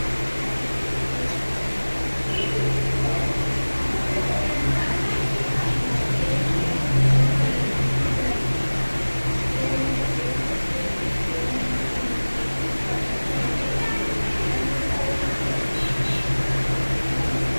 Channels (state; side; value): inverted; both; correlation -1.00